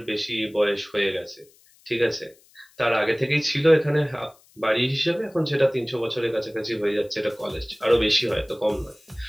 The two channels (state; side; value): noise; left; hiss, 30 dB below the sound